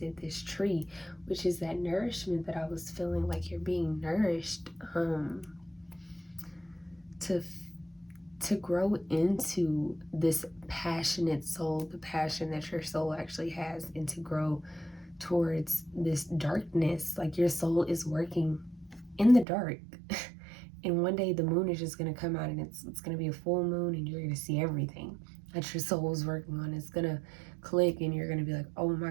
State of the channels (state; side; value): drops out; left; at 19.5 s